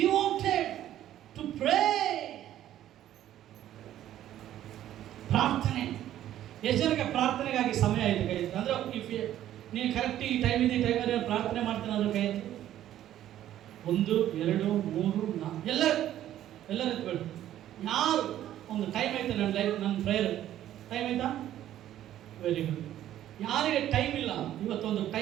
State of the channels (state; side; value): quieter; left; 12.3 dB